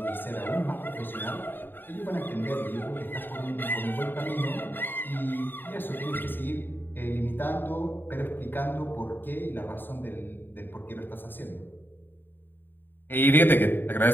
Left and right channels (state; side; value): late; right; 0.094 ms